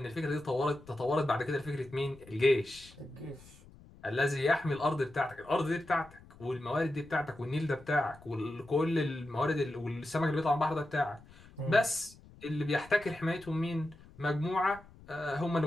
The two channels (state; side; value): noise; left; rumble, 22 dB below the sound